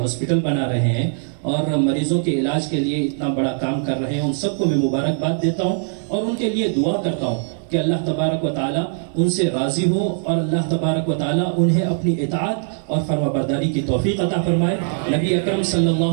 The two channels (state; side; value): silent; left; digital silence